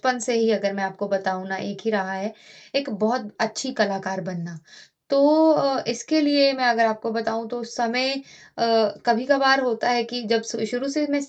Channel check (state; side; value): identical; both; correlation 1.00